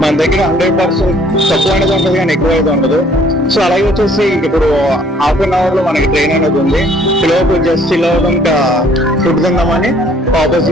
మన దగ్గర 100% తక్కువ అనేది ఉంటుంది కానీ ఎక్కువ అయితే ఉండదు. సో అలాగే వచ్చేసి ఇప్పుడు హాఫ్ అన్ అవర్ లో మనకి ట్రైన్ అనేది ఉంది. పిల్లలకు జస్ట్ ఇలా ఇంకా ఫుడ్ తిందామని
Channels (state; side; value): normal; both; correlation 0.59